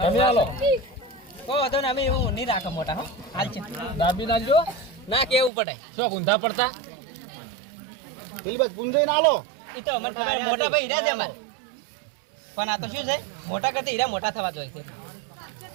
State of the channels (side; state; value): left; drops out; at 5.5 s